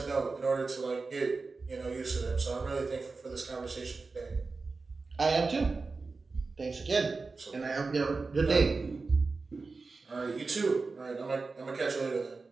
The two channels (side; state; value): left; quieter; 4.0 dB